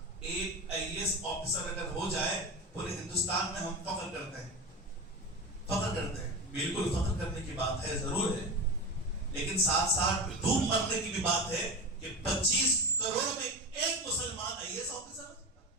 ایک IAS آفیسر اگر ہو جائے پورے ہندوستان میں ہم فخر کرتے ہیں، فخر کرتے ہیں. بالکل فخر کرنے کی بات ہے، ضرور ہے، لیکن ساتھ ساتھ دھوم مرنے کی بھی بات ہے کہ 25 کروڑ میں ایک مسلمان IAS آفیسر ہو سکتا ہے.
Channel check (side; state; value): both; normal; correlation 0.24